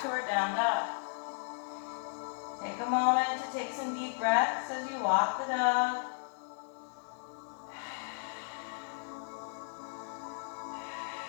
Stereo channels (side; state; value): right; silent; digital silence